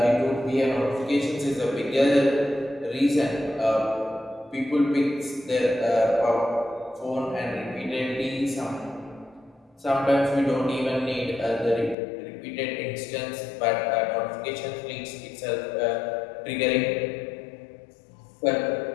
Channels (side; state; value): right; drops out; at 12.0 s